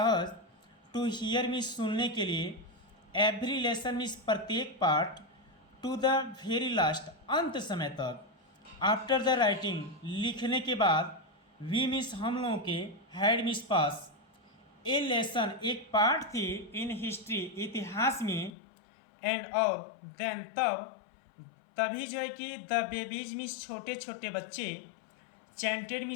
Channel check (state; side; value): drops out; right; at 18.5 s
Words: टू हियर मिस सुनने के लिए एवरी लेसन मिस प्रत्येक part two the very last अंत समय तक आफ्टर द राइटिंग लिखने के बाद वी मिस हम लोगों के had miss pass A lesson एक पार्ट थी इन हिस्ट्री इतिहास में एंड और देन तभी जो है कि द बेबीज मिस छोटे छोटे बच्चे चैंटेड